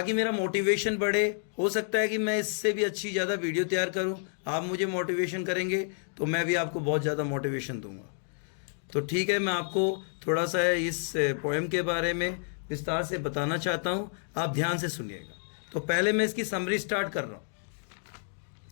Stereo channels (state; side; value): silent; right; digital silence